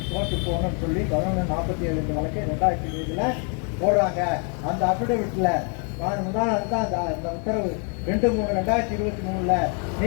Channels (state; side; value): quieter; right; 39.3 dB